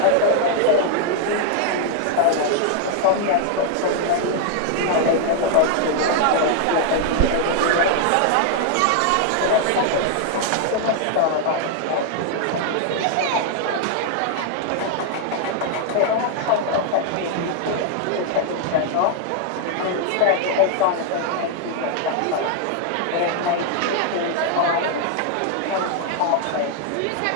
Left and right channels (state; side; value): different; both; correlation 0.00